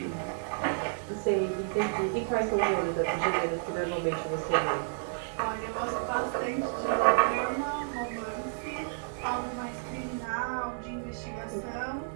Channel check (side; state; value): left; silent; digital silence